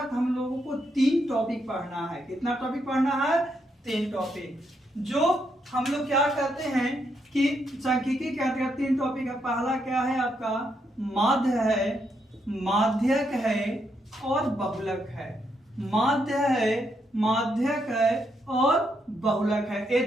हम लोगों को 3 टॉपिक पढ़ना है। कितना टॉपिक पढ़ना है? 3 टॉपिक। जो हम लोग क्या करते हैं कि सांख्यिकी के अंतर्गत 3 टॉपिक है। पहला क्या है आपका? माध्य है, माध्यक है और बहुलक है। माध्य है, माध्यक है और बहुलक है। ये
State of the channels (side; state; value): both; normal; correlation 0.78